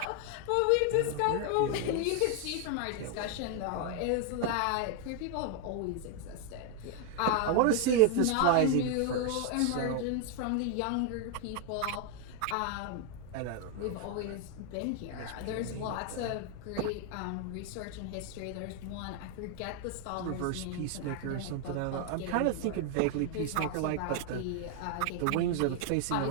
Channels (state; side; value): different; both; correlation 0.00